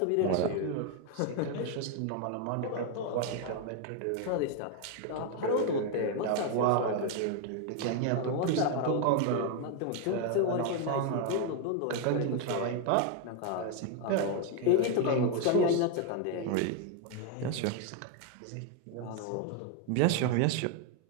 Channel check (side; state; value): both; different; correlation 0.01